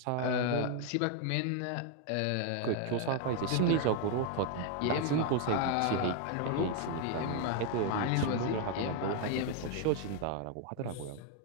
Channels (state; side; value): different; both; correlation 0.00